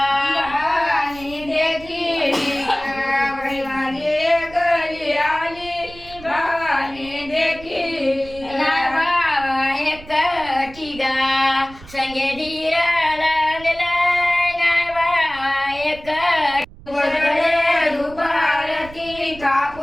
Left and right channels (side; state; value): right; noise; rumble, 19 dB below the sound